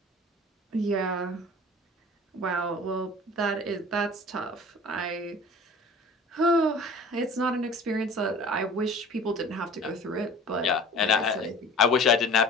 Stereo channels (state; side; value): normal; both; correlation 0.43